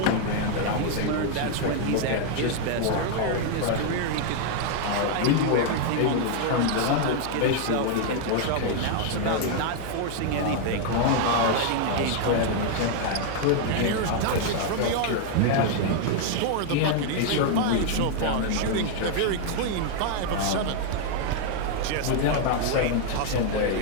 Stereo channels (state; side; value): different; both; correlation 0.00